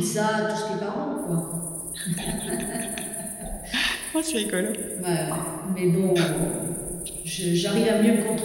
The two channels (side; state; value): right; noise; hum, 26 dB below the sound